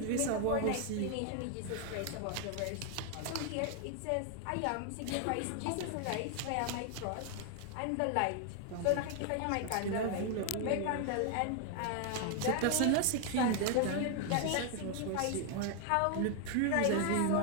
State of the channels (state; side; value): different; both; correlation 0.00